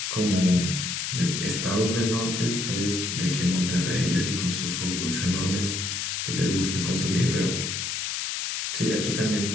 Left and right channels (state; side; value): noise; left; hiss, 2 dB below the sound